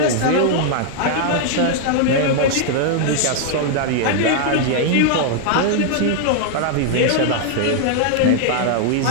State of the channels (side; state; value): both; different; correlation 0.00